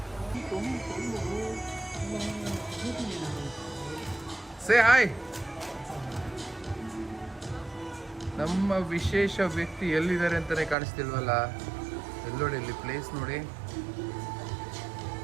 Say hi. ನಮ್ಮ ವಿಶೇಷ ವ್ಯಕ್ತಿ ಎಲ್ಲಿದ್ದಾರೆ ಅಂತಾನೆ ಕಾಣಿಸ್ತಿಲ್ವಲ್ಲ. ಎಲ್ಲೋಡಿ ಇಲ್ಲಿ ಪ್ಲೇಸ್ ನೋಡಿ.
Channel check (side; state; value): left; drops out; at 10.8 s